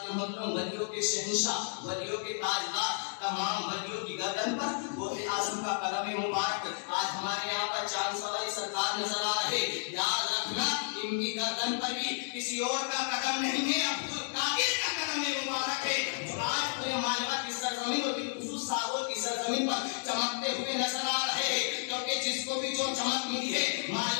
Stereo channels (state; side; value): silent; right; digital silence